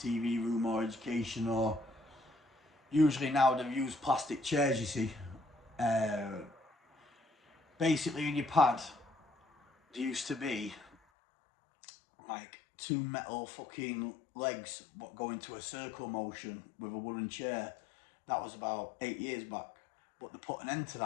TV room or education, or usually now they've used plastic chairs, you see. Basically in your pad, there used to be like 2 metal fucking legs what go into a circle motion with a wooden chair. That was about 8 years back, but they put an end to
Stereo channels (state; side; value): drops out; right; at 11.0 s